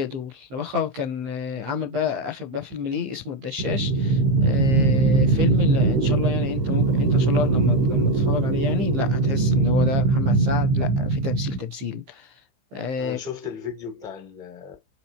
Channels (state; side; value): late; left; 15 ms